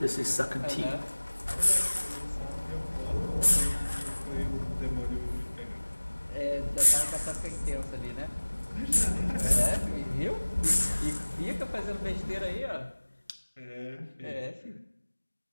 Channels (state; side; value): inverted; both; correlation -1.00